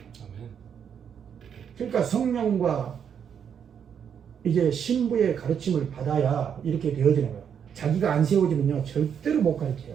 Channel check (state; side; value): quieter; left; 7.9 dB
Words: 아멘. 그러니까 성령과 이제 신부의 가르침을 받아야 이렇게 되어지는 거예요. 자기가 안 세워지면요 절대로 못 가르쳐요.